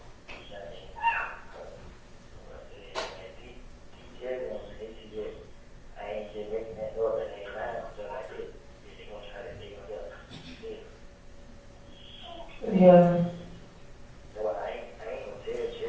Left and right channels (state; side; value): identical; both; correlation 1.00